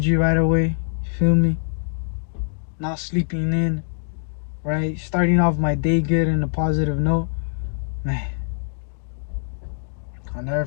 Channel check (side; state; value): right; silent; digital silence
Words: right away. feel me? Not sleeping in, right? Starting off my day good in a positive note. Man, I'll never